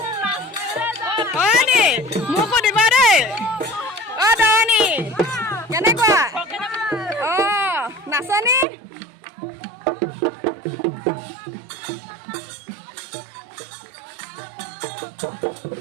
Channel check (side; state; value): left; drops out; at 8.7 s